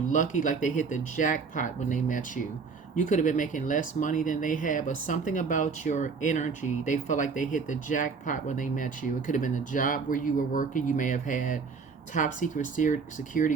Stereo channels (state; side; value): quieter; left; 5.1 dB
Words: like they hit the jackpot when they met you. You could have been making less money than they had, but something about your energy, they felt like they hit the jackpot when they met you. It could have been the job where you were working. You may have had top secret security